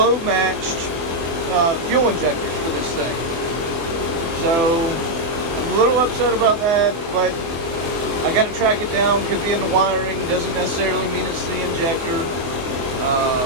matched fuel injectors for this thing. So I'm a little upset about that, but I got to track it down. Could be in the wiring, doesn't necessarily mean it's the injector.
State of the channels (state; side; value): late; left; 24 ms